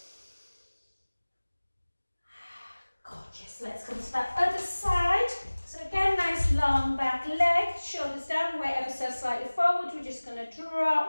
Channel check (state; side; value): inverted; both; correlation -1.00